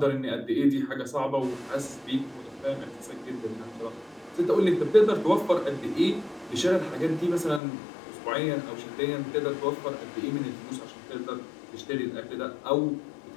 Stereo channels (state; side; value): drops out; right; at 7.6 s